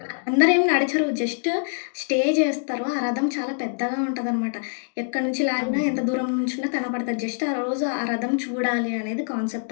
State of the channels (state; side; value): silent; right; digital silence